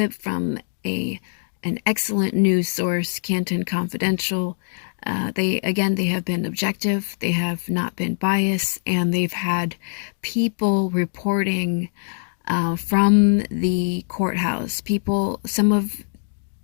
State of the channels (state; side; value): silent; right; digital silence